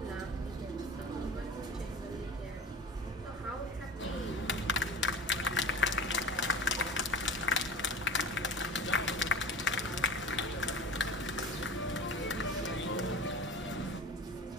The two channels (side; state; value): both; normal; correlation 0.36